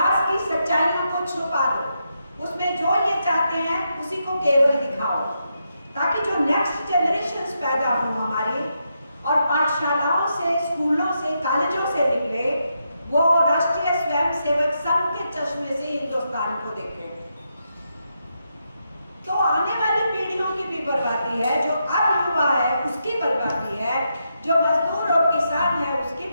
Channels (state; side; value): inverted; both; correlation -0.83